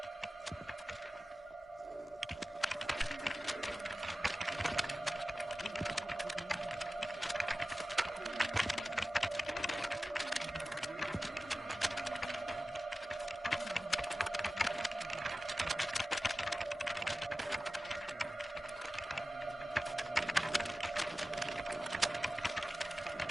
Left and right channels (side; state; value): both; normal; correlation 0.96